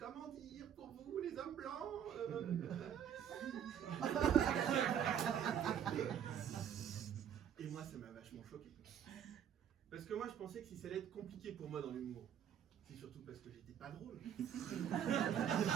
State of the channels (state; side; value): quieter; left; 9.2 dB